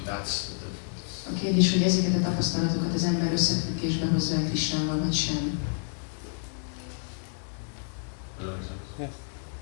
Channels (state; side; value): silent; right; digital silence